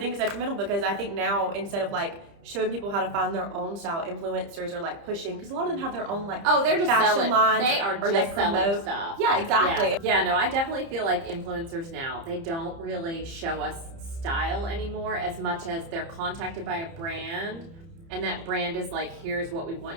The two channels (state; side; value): late; left; 30 ms